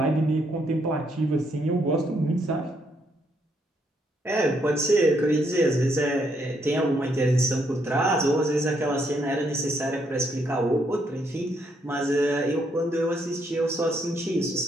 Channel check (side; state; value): both; normal; correlation 0.74